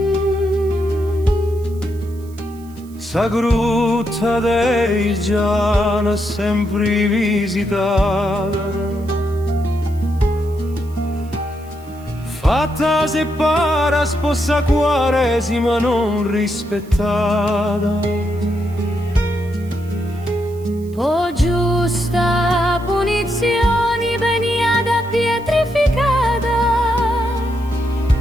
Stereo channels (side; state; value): right; noise; hiss, 26 dB below the sound